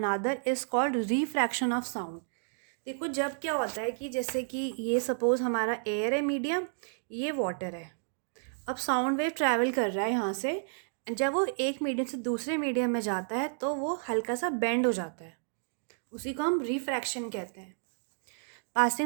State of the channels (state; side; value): silent; left; digital silence